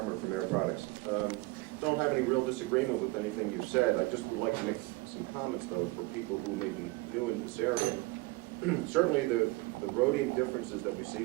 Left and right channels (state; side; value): quieter; left; 22.2 dB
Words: from Air Products. Don't have any real disagreement with anything you've said. I just would like to make some comments, though, for people who may be new in this area. Certainly the rhodium differences that we see